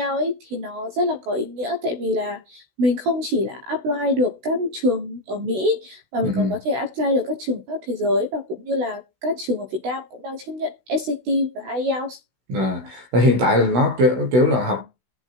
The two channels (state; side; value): late; left; 16 ms